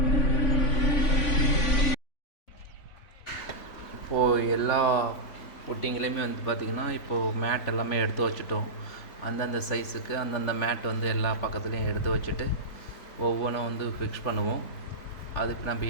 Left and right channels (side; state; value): right; late; 3.5 ms